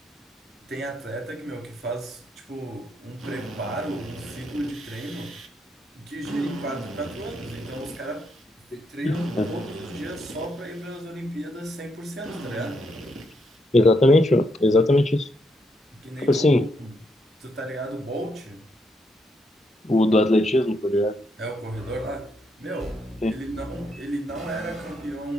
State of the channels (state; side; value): normal; both; correlation 0.78